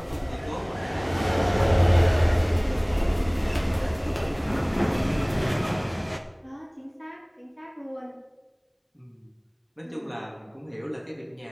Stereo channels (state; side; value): identical; both; correlation 1.00